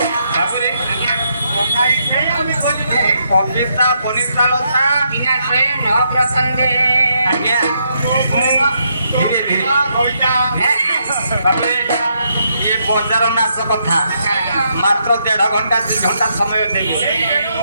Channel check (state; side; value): inverted; both; correlation -0.77